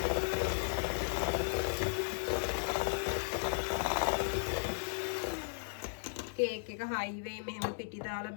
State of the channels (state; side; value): silent; right; digital silence